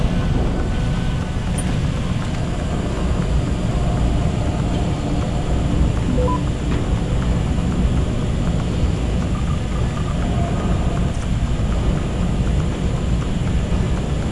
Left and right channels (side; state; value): both; identical; correlation 1.00